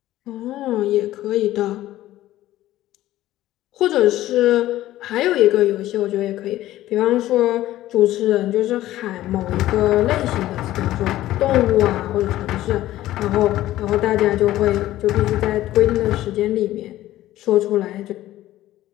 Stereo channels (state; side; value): quieter; right; 14.7 dB